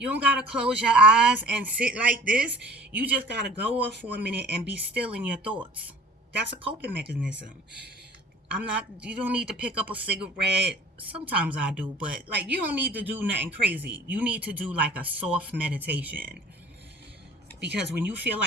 don't gotta close your eyes and sit like this. You just gotta go off for a minute and be still in your thoughts. That's a coping mechanism. You don't need to pick up a cigarette. Sometimes I do, but like, you don't need to do nothing crazy. You need to do like a soft meditation. Because when you feel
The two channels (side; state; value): both; normal; correlation 0.48